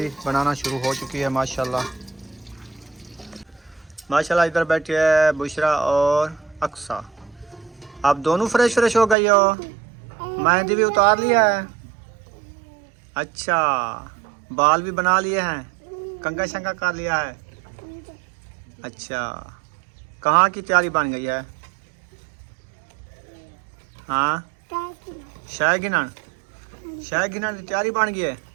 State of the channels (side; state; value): left; drops out; at 9.2 s